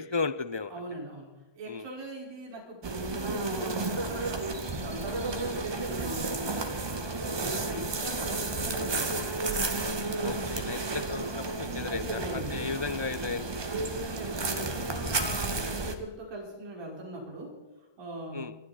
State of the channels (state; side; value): late; left; 1.2 ms